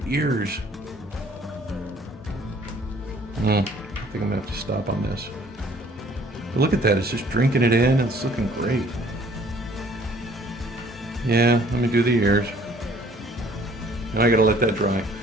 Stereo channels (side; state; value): both; normal; correlation 0.57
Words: ears. I think I'm going to have to stop on this. But look at that, it's just drinking it in. It's looking great. Yeah, let me do the ears. Now I gotta let that dry.